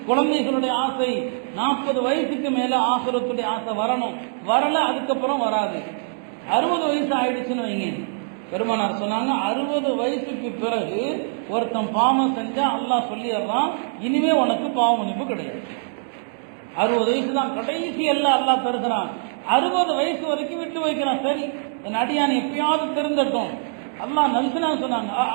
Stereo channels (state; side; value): silent; left; digital silence